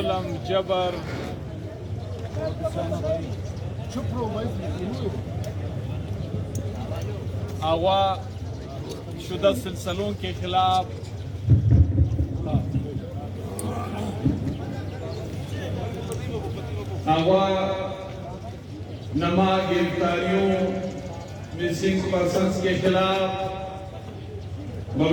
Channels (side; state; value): both; identical; correlation 1.00